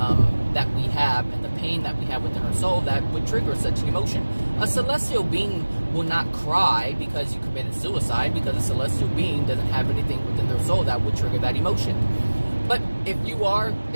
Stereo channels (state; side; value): inverted; both; correlation -1.00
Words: that we have, and the pain that we have within our soul that would trigger such an emotion. A celestial being will not cry because you committed suicide, because a celestial being doesn't have anything within their soul that would trigger that emotion. But if you